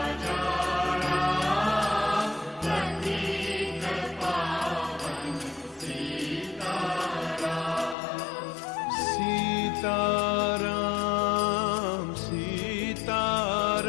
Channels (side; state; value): right; drops out; at 8.0 s